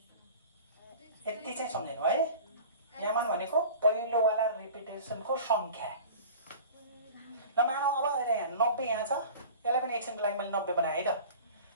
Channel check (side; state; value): both; inverted; correlation -0.39